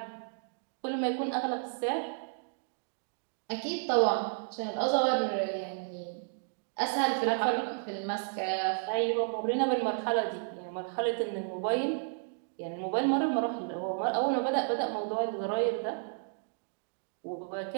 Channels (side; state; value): left; silent; digital silence